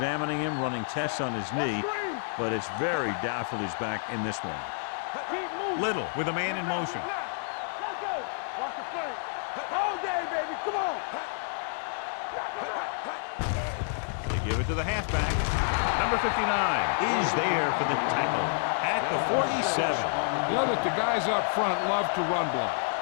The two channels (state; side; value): silent; right; digital silence